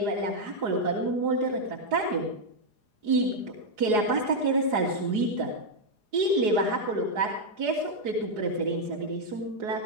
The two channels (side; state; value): left; late; 4.8 ms